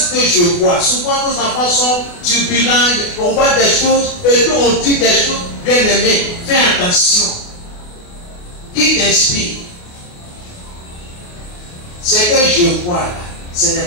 que je vois. Souvent, nos enfants sont turbulents, on voit des choses, et puis on dit des choses. Bien aimé, fais attention. Qui t'inspire? Ce que je vois là, ce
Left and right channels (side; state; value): right; late; 28 ms